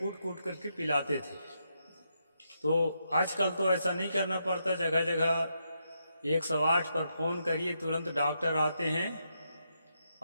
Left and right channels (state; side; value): inverted; both; correlation -0.81